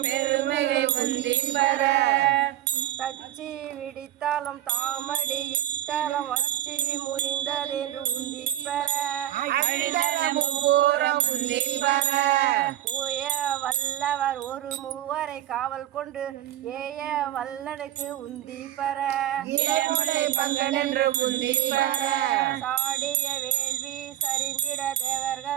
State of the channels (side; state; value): left; quieter; 12.8 dB